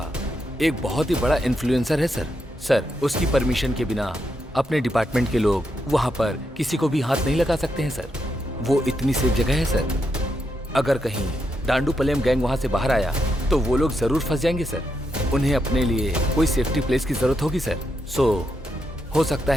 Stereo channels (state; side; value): normal; both; correlation 0.82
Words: एक बहुत ही बड़ा इन्फ्लुएंसर है सर। सर, उसकी परमिशन के बिना अपने डिपार्टमेंट के लोग वहां पर किसी को भी हाथ नहीं लगा सकते हैं सर। वो इतनी सेफ जगह है सर। अगर कहीं डांडूपलियम गैंग वहां से बाहर आया तो वो लोग जरूर फंस जाएंगे सर। उन्हें अपने लिए कोई सेफ्टी प्लेस की जरूरत होगी सर। सो हो सकता